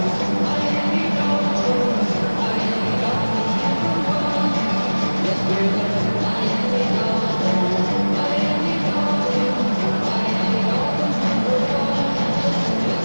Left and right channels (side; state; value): both; inverted; correlation -1.00